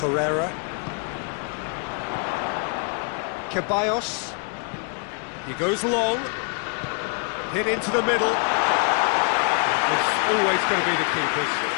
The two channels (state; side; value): quieter; right; 38.8 dB